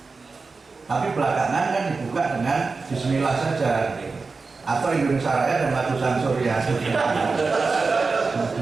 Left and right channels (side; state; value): left; quieter; 4.2 dB